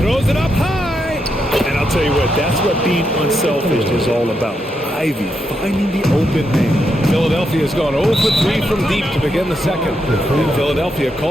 Throws it up high. And I'll tell you what, that's what being unselfish is all about. Ivy finding the open man. Philadelphia's gone 0 for 3 from deep to begin the second. And Philadelphia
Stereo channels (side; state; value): both; normal; correlation 0.82